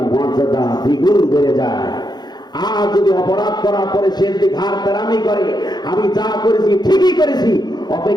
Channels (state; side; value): late; right; 0.20 ms